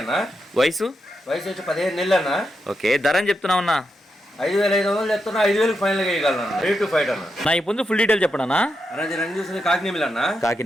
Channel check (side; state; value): both; normal; correlation 0.85